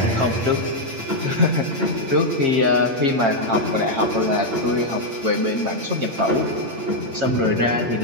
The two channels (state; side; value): late; left; 8.8 ms